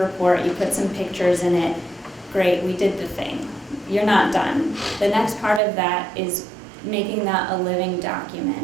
you put some pictures in it. Great, we did the thing. You're not done. The next part of that is making that a living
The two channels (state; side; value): drops out; left; at 5.6 s